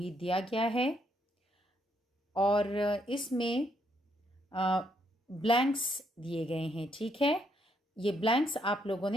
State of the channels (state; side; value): normal; both; correlation 0.74